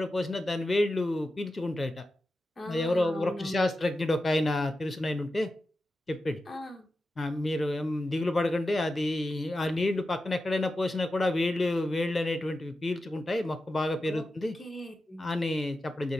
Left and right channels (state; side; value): normal; both; correlation 0.91